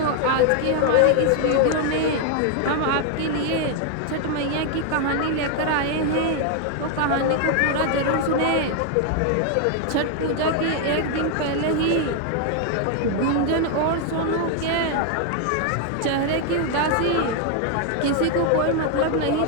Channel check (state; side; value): different; both; correlation 0.00